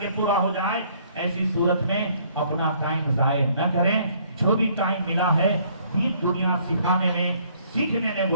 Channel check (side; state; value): both; inverted; correlation -0.62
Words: پورا ہو جائے. ایسی صورت میں اپنا ٹائم ضائع نہ کریں. جو بھی ٹائم ملا ہے دین دنیا سکھانے میں سیکھنے میں